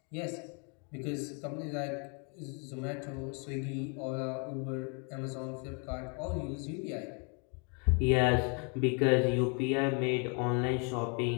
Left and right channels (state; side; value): quieter; right; 37.0 dB